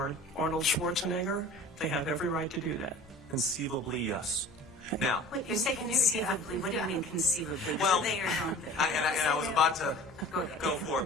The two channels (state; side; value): normal; both; correlation 0.42